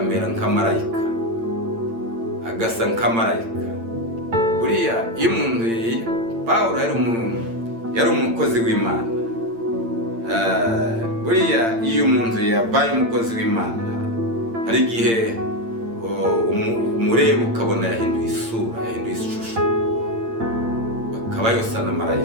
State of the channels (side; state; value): left; late; 8.8 ms